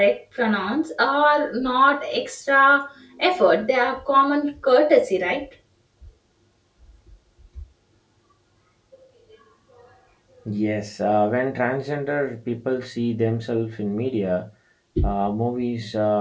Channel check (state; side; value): identical; both; correlation 1.00